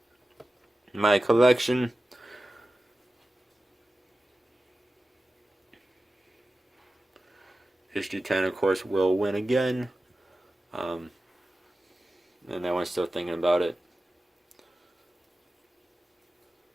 My collection. HD10, of course, will win again. And that one's still thinking about it.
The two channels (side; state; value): both; normal; correlation 0.94